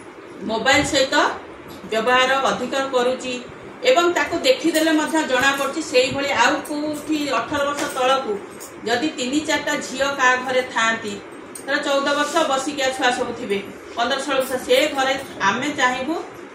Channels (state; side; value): identical; both; correlation 1.00